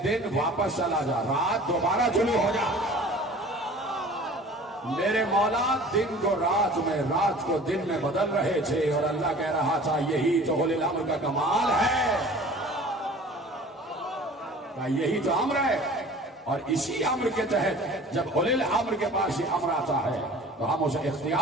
دن واپس چلا جا، رات دوبارہ طلوع ہو جا۔ میرے مولا دن کو رات میں، رات کو دن میں بدل رہے تھے، اور اللہ کہہ رہا تھا یہی تو اولی الامر کا کمال ہے، یہی تو امر ہے۔ اور اسی امر کے تحت جب اولی الامر کے پاس یہ امر آتا ہے تو ہم اسے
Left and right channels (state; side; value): normal; both; correlation 0.45